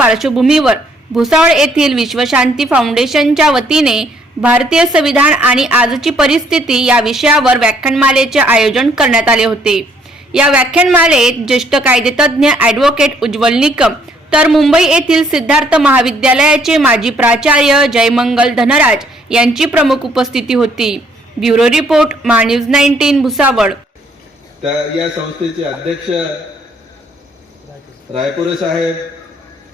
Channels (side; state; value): both; normal; correlation 0.65